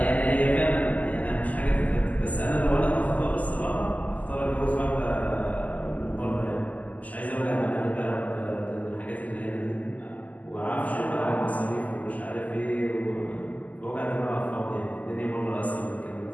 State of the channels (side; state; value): right; late; 0.076 ms